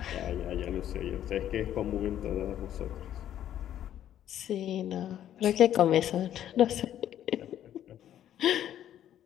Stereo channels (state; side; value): quieter; right; 11.1 dB